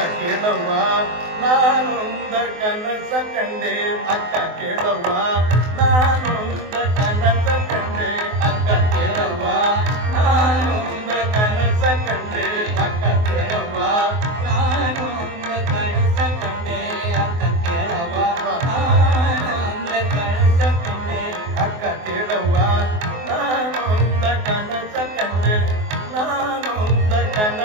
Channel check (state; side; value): late; left; 24 ms